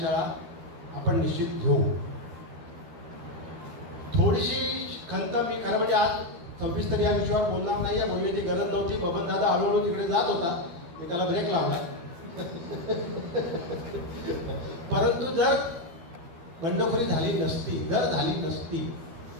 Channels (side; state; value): left; late; 13 ms